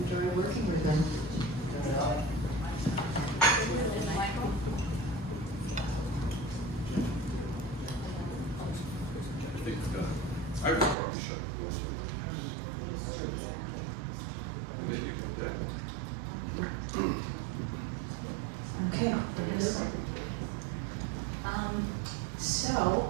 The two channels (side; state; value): left; drops out; at 11.0 s